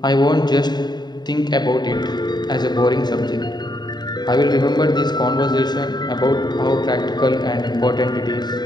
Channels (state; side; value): late; right; 0.20 ms